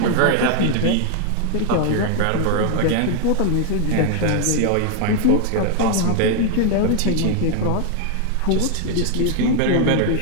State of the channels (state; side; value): different; both; correlation 0.00